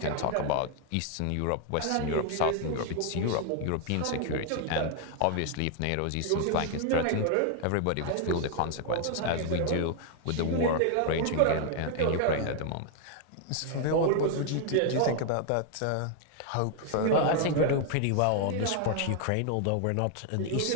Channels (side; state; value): both; different; correlation 0.00